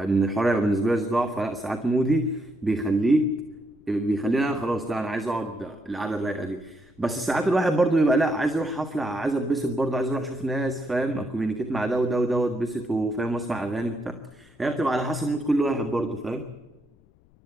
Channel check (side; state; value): left; noise; rumble, 29 dB below the sound